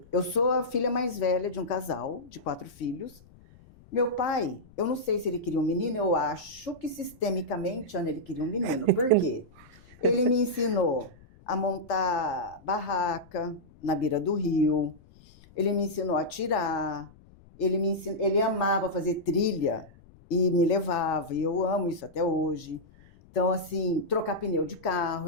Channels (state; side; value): noise; left; rumble, 25 dB below the sound